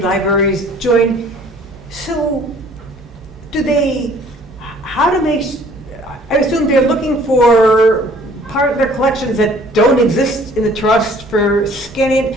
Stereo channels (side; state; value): both; normal; correlation 0.55